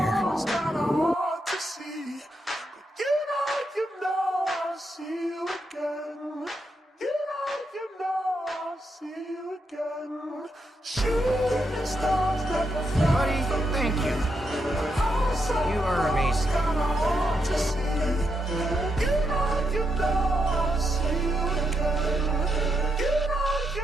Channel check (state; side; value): normal; both; correlation 0.82